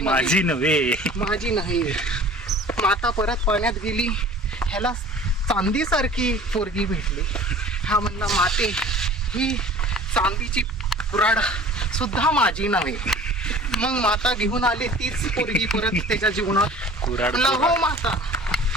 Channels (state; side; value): normal; both; correlation 0.45